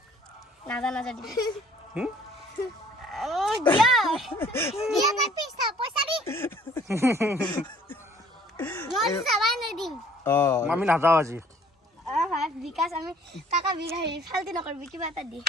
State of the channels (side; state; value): both; normal; correlation 0.57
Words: না দি ও দিয়া না পয়সা দি মই সবাই না দিম আমি না যাও আজি হ্যাঁ বিকাশ আমি টাকা বিঘাই ফালতি নকরবি কিবা এটা দি